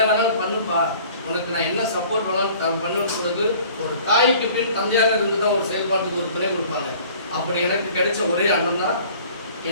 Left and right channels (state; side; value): inverted; both; correlation -0.50